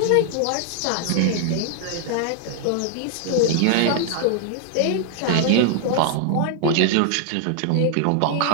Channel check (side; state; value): both; different; correlation 0.00